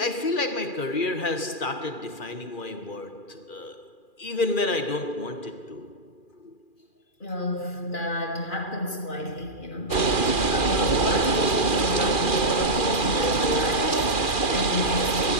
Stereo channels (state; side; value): late; right; 2.4 ms